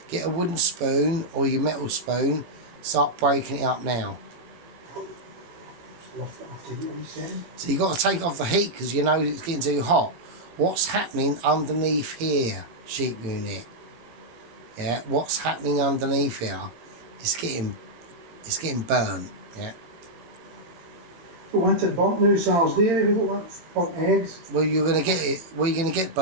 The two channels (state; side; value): late; left; 18 ms